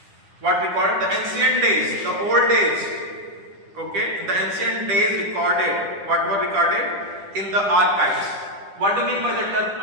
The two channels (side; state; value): left; late; 10 ms